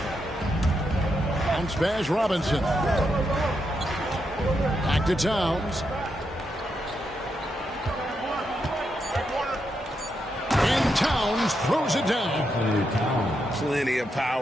Bounce pass, Robinson. Back to Towns. And Towns throws it down. Plenty of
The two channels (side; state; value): both; normal; correlation 0.83